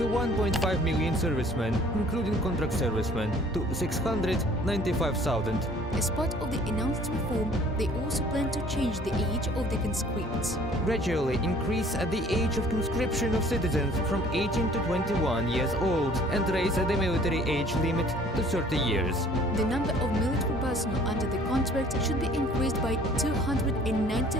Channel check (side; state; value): both; normal; correlation 0.54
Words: 1.5 million servicemen, including contract servicemen, to 695,000. As part of the announced reform, they also plan to change the age of the conscripts. Gradually increase the age of conscription of citizens from 18 to 21 years old and raise the military age limit to 30 years. The number of military personnel under the contract should be increased by